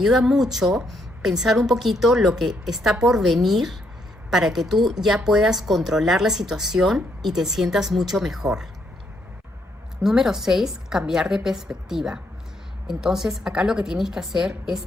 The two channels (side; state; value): both; normal; correlation 0.74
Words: mucho pensar un poquito lo que está por venir para que tú ya puedas controlar la situación y te sientas mucho mejor. Número 6, cambiar de perspectiva. Entonces, acá lo que tienes que hacer es